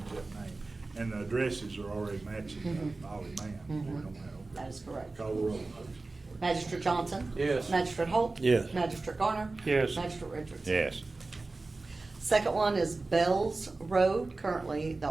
that name. And the addresses are already matching Ollie Man. We don't have- That is correct. Call the roll, please. Magistrate Johnson? Yes. Magistrate Holt? Yes. Magistrate Garner? Yes. Magistrate Richardson? Yes. Second one is Bell's Road, currently the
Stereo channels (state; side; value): quieter; left; 3.4 dB